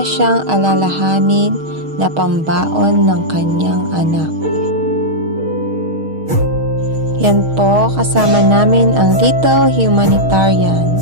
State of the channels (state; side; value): late; left; 6.4 ms